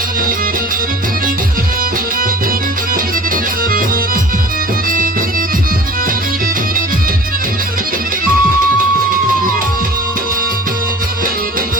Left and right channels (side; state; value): both; normal; correlation 0.43